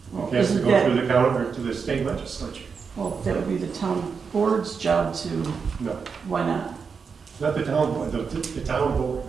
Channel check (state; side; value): quieter; left; 5.7 dB